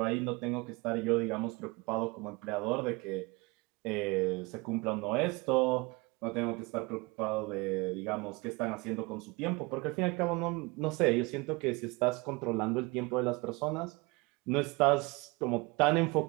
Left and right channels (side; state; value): left; quieter; 25.7 dB